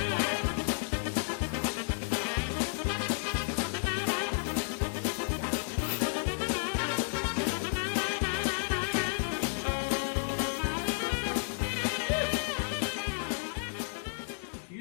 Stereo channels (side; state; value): right; silent; 56 dB below the other